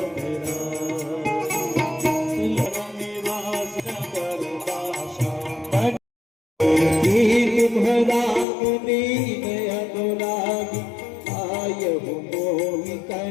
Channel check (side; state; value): right; drops out; at 8.5 s